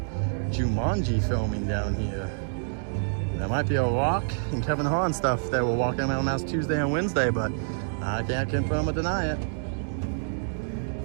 Jumanji filming down here. There might be a Rock and Kevin Hart and stuff that were walking around last Tuesday and Wednesday, but I can't confirm or deny it.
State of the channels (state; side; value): silent; left; digital silence